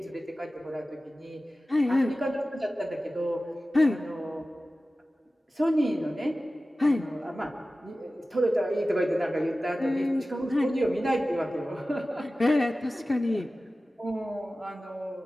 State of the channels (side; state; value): both; normal; correlation 0.96